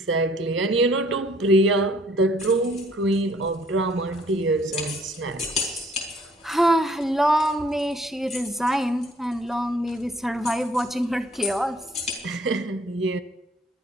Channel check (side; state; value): both; normal; correlation 0.60